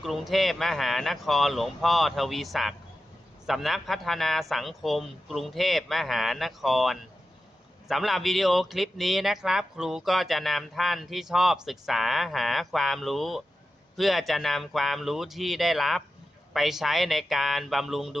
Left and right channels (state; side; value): normal; both; correlation 0.92